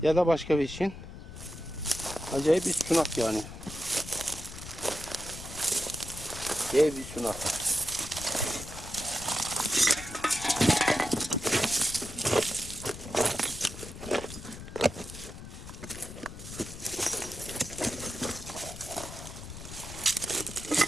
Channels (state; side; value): noise; left; rumble, 12 dB below the sound